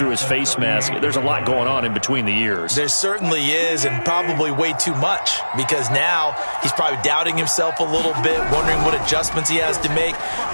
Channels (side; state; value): both; inverted; correlation -1.00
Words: his face mask. There's a lot going on in between the ears. There certainly is, and probably way too much, because now he's probably doubting himself a little bit, wondering what adjustments he has to make.